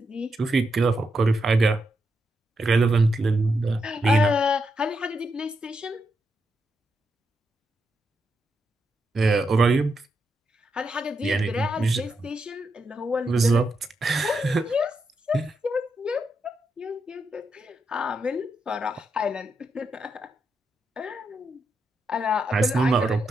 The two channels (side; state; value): both; normal; correlation 0.83